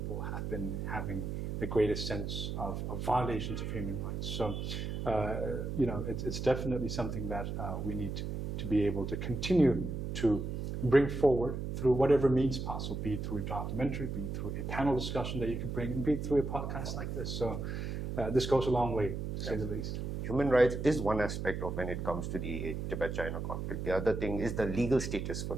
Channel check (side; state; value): right; noise; hum, 4 dB below the sound